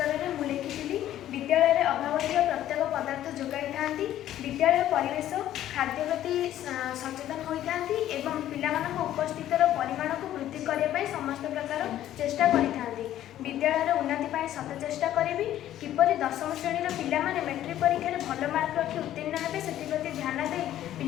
में मुझे लिखी विद्यालय अभाव प्रत्येक पदार्थ जोगाई था विद्यालय परिवेश खाद्य प्रति सचेतन होता पिला उपस्थित परिमाण को वृद्धि करने समस्त प्रकार चेष्टा करते विद्यालय उन्नति सत चेष्टा करी किपरि दशम श्रेणी पिला मेट्रिक परीक्षा भल मार्क रखी उत्तीर्ण हे से ध्यान दे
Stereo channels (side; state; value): right; quieter; 12.4 dB